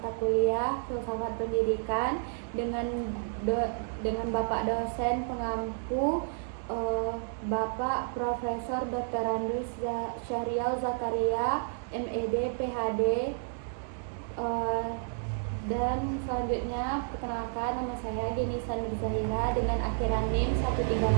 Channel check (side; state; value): left; silent; digital silence